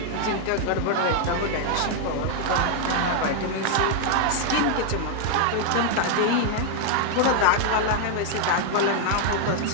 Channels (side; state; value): both; different; correlation 0.00